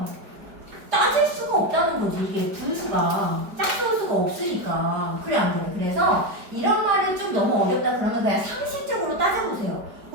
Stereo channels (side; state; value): left; late; 5.0 ms